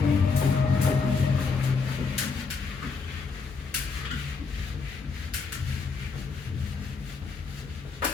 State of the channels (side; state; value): right; quieter; 4.9 dB